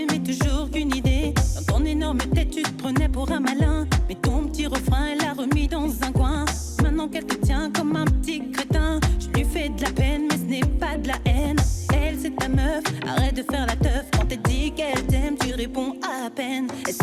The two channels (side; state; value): both; identical; correlation 1.00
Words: mais toujours qu'une idée. Dans ton énorme tête, tu te prenais pour un malin. Mais ton petit refrain, elle l'a remis dans un coin. Maintenant qu'elle te tient comme un petit crétin, je lui fais de la peine, mais ce n'est pas de la haine. Elle, c'est ta meuf, arrête de faire la teuf. Quand elle dit qu'elle t'aime, tu réponds à peine. Elle